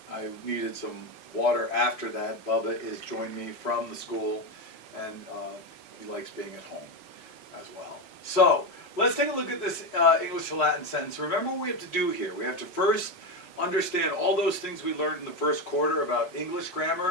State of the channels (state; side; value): late; right; 4.7 ms